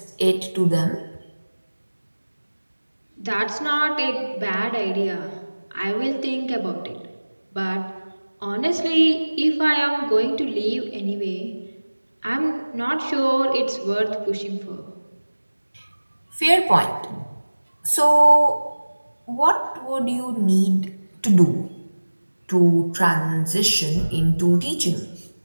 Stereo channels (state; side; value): inverted; both; correlation -1.00